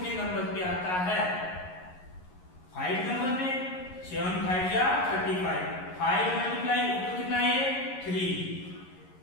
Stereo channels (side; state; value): right; late; 11 ms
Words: नंबर पे आता है, 5 नंबर पे, 7 5 या 35, 5 मल्टीप्लाई ऊपर कितना है 3,